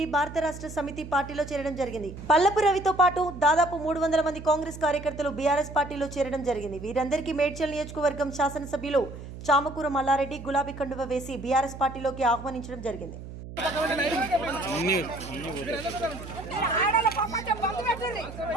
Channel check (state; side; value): noise; right; hum, 12 dB below the sound